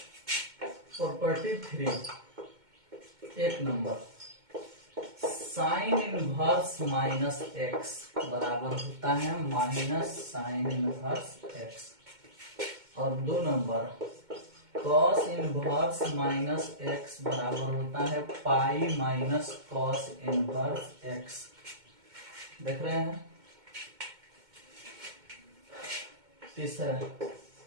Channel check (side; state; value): left; late; 2.2 ms